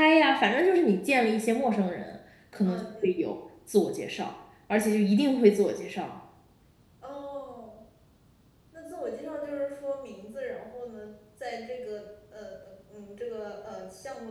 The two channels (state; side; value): identical; both; correlation 1.00